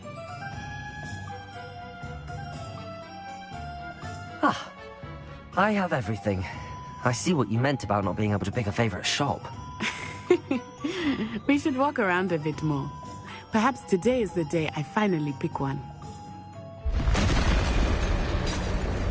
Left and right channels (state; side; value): identical; both; correlation 1.00